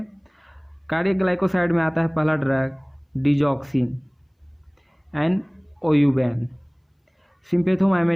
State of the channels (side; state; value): both; identical; correlation 1.00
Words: cardiac glycoside में आता है पहला ड्रग डिजॉक्सिन एंड ओयूबैन।